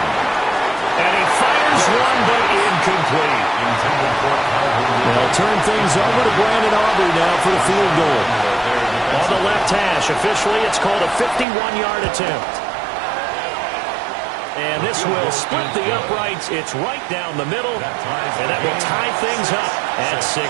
And he fires one, but incomplete. They'll turn things over to Brandon Aubrey now for the field goal. On the left hash, officially it's called a 51-yard attempt. And this will split the uprights. It's right down the middle, and that will tie things up at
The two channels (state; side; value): drops out; left; at 11.5 s